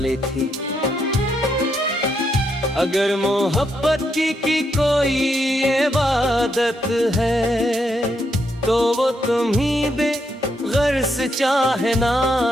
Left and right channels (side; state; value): both; normal; correlation 0.78